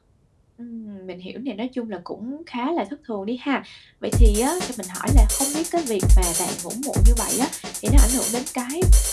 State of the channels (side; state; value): both; identical; correlation 1.00